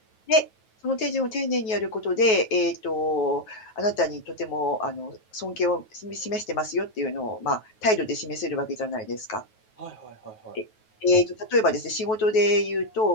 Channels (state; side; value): late; right; 9.3 ms